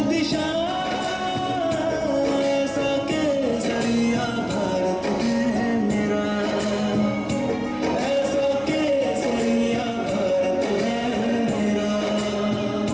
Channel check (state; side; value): noise; right; rumble, 29 dB below the sound